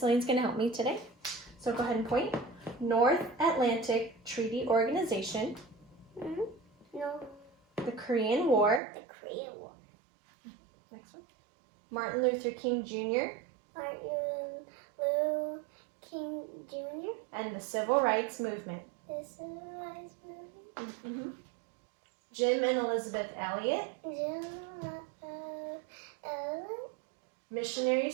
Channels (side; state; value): left; drops out; at 8.8 s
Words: going to help me today. So go ahead and point. North Atlantic Treaty Organization. No. The Korean War. The Korean War. Next one. Martin Luther King Jr. Martin Luther King Jr. And the Civil Rights Movement. The Civil Rights Movement. Jim and Elizabeth Elliot.